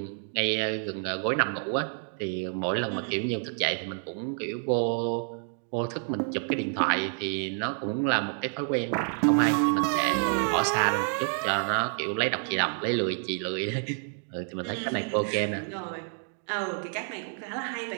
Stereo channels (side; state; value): left; silent; 58 dB below the other